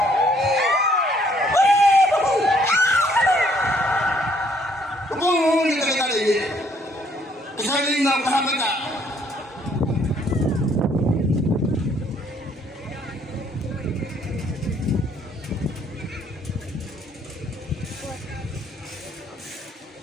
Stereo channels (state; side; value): normal; both; correlation 0.65